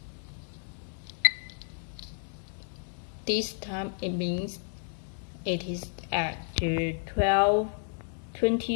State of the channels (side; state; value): right; silent; digital silence